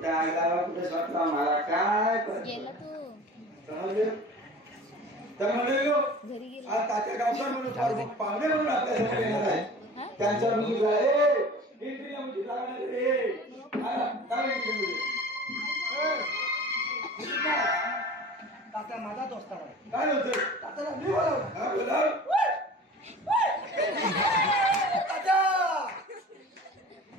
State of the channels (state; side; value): normal; both; correlation 0.40